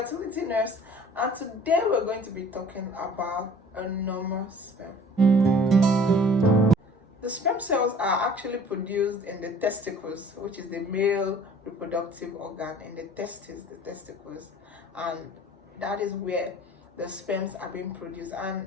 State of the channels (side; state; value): both; normal; correlation 0.49